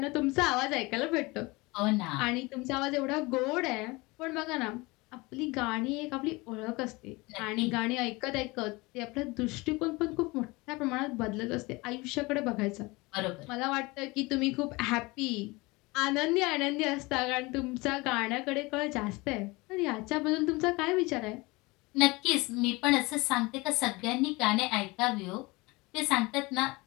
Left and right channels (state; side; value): quieter; right; 23.8 dB